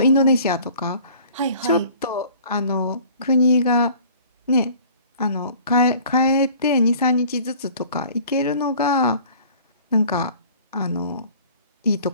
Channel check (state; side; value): inverted; both; correlation -0.50